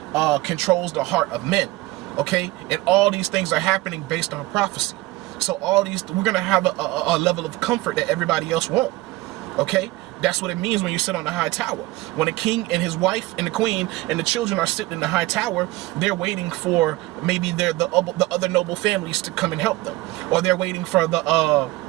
controls the heart of men. Okay, and all these things are happening based on prophecy. So we're going to have a level of comfort that everybody else won't. Okay, that's what it means when you sit on the high tower. When a king and his wife and the queen and the children are sitting in the high tower, they're waiting for maybe the other noble families to come and help them. Or they're waiting for the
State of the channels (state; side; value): quieter; left; 19.1 dB